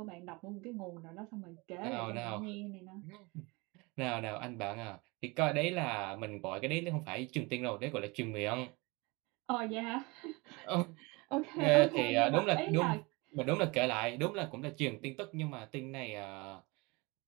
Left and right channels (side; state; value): left; quieter; 25.9 dB